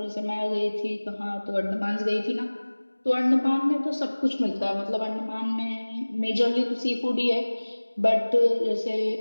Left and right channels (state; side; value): inverted; both; correlation -1.00